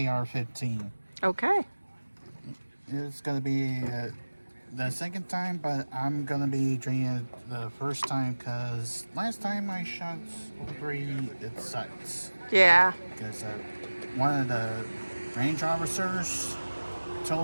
15. Okay. It's going to be the second time, but I'm going to be doing it the first time because last time I shot 3, it sucks. Yeah. Because one of the range officers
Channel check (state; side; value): inverted; both; correlation -1.00